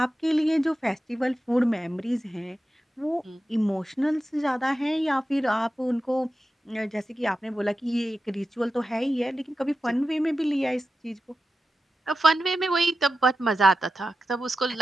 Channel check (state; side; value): normal; both; correlation 0.92